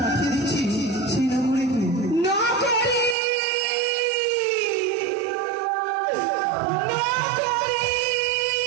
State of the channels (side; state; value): left; drops out; at 3.2 s